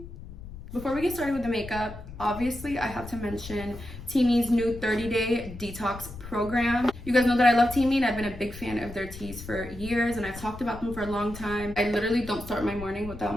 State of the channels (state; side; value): noise; left; rumble, 13 dB below the sound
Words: Before we get started with the makeup, obviously I have to mention Teami's new 30-day detox program. You guys know that I love Teami and I've been a big fan of their teas for years and I've talked about them for a long time. I literally don't start my morning